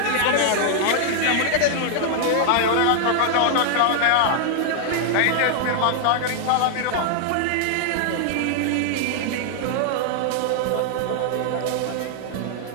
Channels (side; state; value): both; different; correlation 0.00